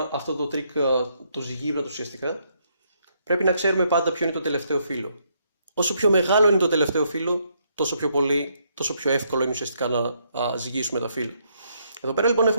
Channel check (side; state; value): both; inverted; correlation -0.74